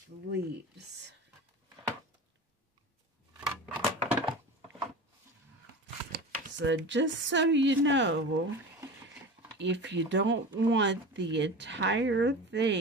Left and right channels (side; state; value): both; normal; correlation 0.31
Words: the leaves. So just so you know, if you don't want the entire